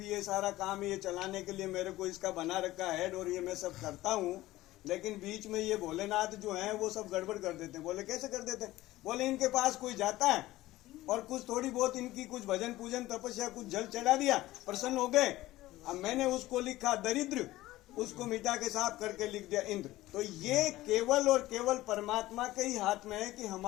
ये सारा काम ये चलाने के लिए मेरे को इसका बना रखा है और ये मैं सब करता हूँ, लेकिन बीच में ये भोलेनाथ जो है वो सब गड़बड़ कर देते हैं। बोले कैसे कर देते हैं? बोले इनके पास कोई जाता है और कुछ थोड़ी बहुत इनकी कुछ भजन पूजन तपस्या कुछ जल चढ़ा दिया, प्रसन्न हो गए। अब मैंने उसको लिखा दरिद्र, उसको मिटा के साफ करके लिख दिया इंद्र। तो ये केवल और केवल परमात्मा के ही हाथ में है कि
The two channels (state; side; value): quieter; right; 16.8 dB